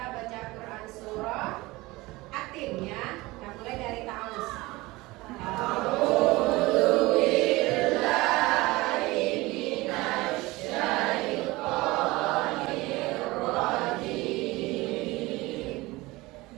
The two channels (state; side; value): quieter; left; 21.0 dB